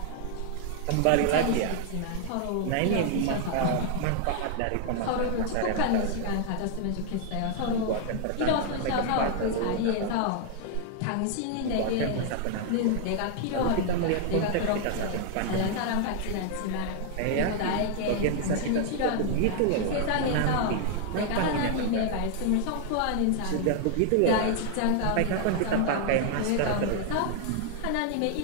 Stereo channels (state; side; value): different; both; correlation 0.00